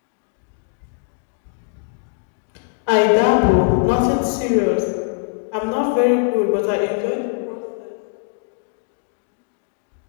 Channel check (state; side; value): silent; right; digital silence